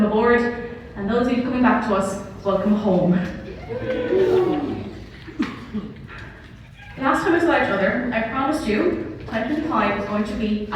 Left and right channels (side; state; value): both; identical; correlation 1.00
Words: aboard. And those of you coming back to us, welcome home. Last time we saw each other, I promised you 2025 was going to be